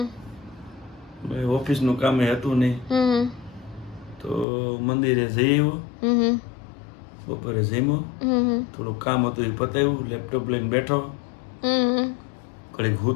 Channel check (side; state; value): right; drops out; at 4.5 s